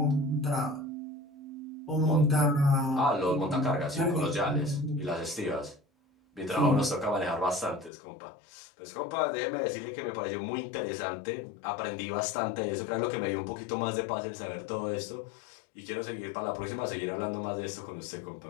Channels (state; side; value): drops out; right; at 7.9 s